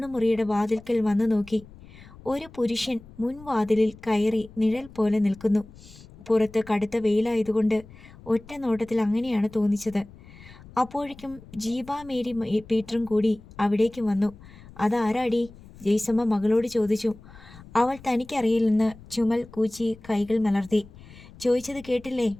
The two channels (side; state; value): left; noise; rumble, 20 dB below the sound